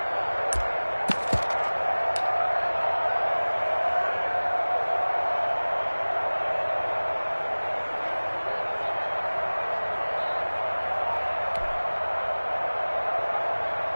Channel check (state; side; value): inverted; both; correlation -1.00